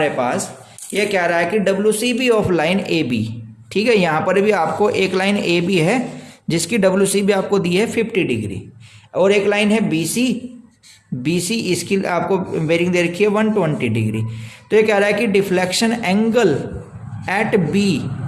पास, ये कह रहा है कि WCB ऑफ लाइन AB। ठीक है, यहाँ पर भी आपको एक लाइन AB है जिसकी WCB आपको दी है 50 डिग्री, और एक लाइन है BC इसकी आपको बेरिंग दे रखी है 120 डिग्री। तो ये कह रहा है कि deflection angle at B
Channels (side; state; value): both; identical; correlation 1.00